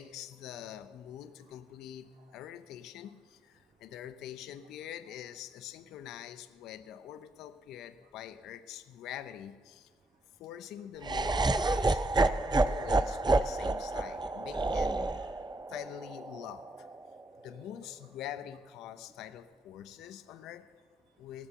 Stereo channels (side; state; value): both; normal; correlation 0.77